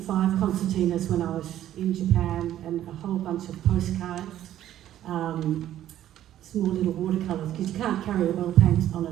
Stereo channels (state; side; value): quieter; left; 12.2 dB